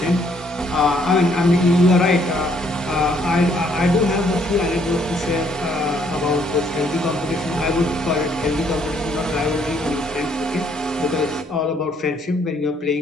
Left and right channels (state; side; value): normal; both; correlation 0.67